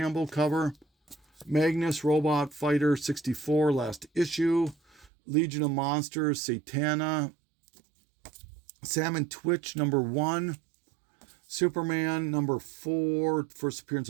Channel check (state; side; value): drops out; left; at 5.1 s